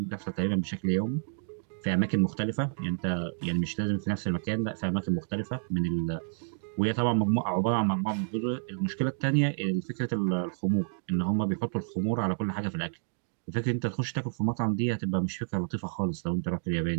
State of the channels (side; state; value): left; silent; digital silence